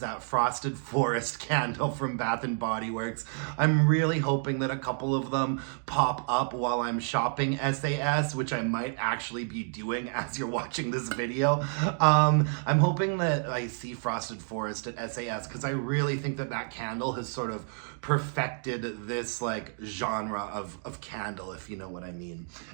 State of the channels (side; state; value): left; silent; 58 dB below the other